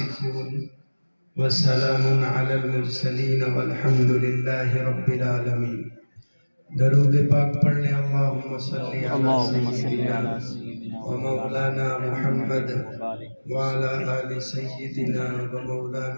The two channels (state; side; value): inverted; both; correlation -1.00